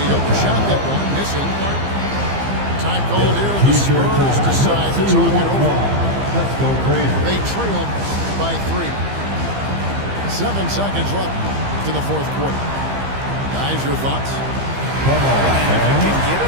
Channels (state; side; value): late; left; 15 ms